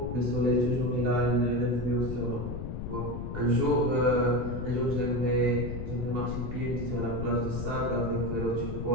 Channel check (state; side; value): noise; left; rumble, 6 dB below the sound